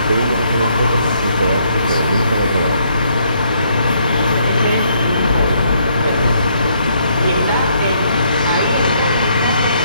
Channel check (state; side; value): inverted; both; correlation -0.70